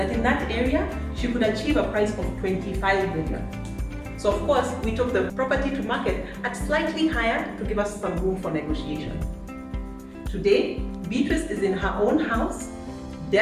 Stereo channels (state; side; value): identical; both; correlation 1.00